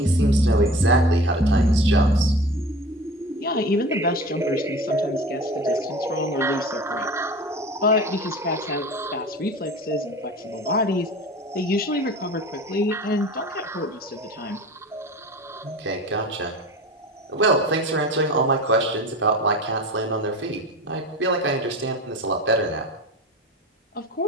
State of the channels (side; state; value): both; normal; correlation 0.36